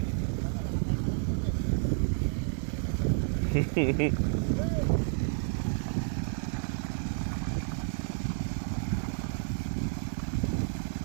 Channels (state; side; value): silent; left; 57 dB below the other